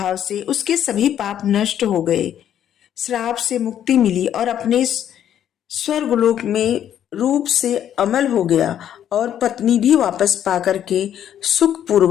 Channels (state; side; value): quieter; right; 10.2 dB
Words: से उसके सभी पाप नष्ट हो गए, श्राप से मुक्ति मिली और अपने स्वर्गलोक में रूप से अमल हो गया और पत्नी भी वापस पाकर के सुख